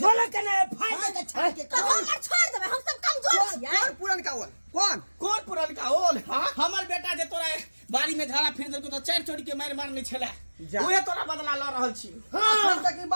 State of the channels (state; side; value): inverted; both; correlation -1.00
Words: छोले के नहीं फाड़ दे छाड़ के। तो हम छोड़ देबे हम सब कमजोर छियै। पुरन का कौन कौन पुरनका होल हमर बेटा जे तोरा बाड़ी में झाड़ा फिर देलको तो चार चोरी के मार मारने छले जा। ओहे तोरा बदला ल रहल छी अखन तक ई